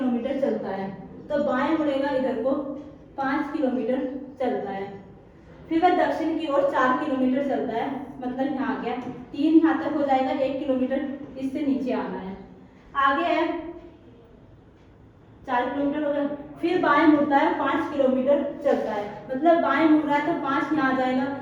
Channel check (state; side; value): identical; both; correlation 1.00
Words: चलता है, तो बाएं मुड़ेगा इधर को, 5 किलोमीटर चलता है। फिर वह दक्षिण की ओर 4 किलोमीटर चलता है, मतलब यहाँ आ गया, 3 यहाँ तक हो जाएगा, 1 किलोमीटर इससे नीचे आना है। आगे है 4 किलोमीटर हो गया। फिर बाएं मुड़ता है, 5 किलोमीटर चलता है, मतलब बाएं मुड़ रहा है तो 5 यहाँ आ जाएगा।